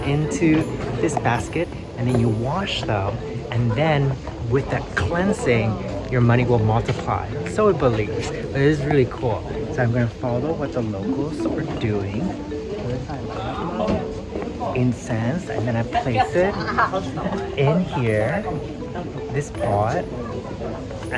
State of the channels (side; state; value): both; identical; correlation 1.00